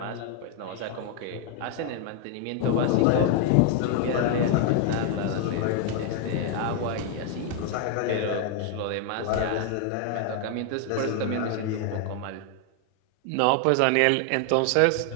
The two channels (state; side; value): different; both; correlation 0.00